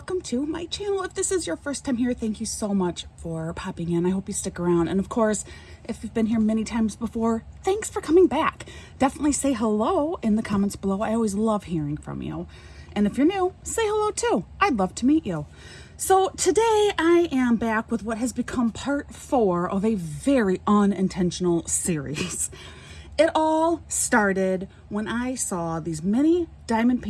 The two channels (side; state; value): both; identical; correlation 1.00